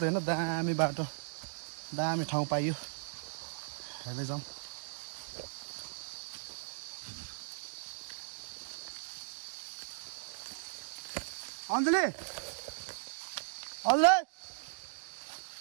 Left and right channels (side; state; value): left; silent; digital silence